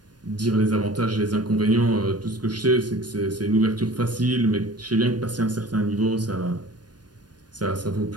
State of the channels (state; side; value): late; left; 0.69 ms